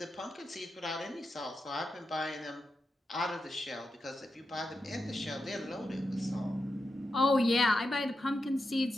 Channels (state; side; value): normal; both; correlation 0.88